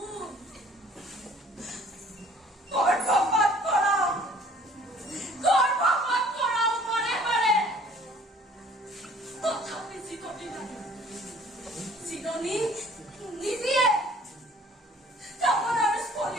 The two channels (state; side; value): normal; both; correlation 0.54